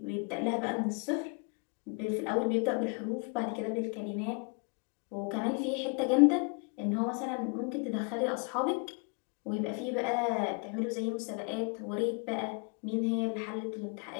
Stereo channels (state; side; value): quieter; right; 34.8 dB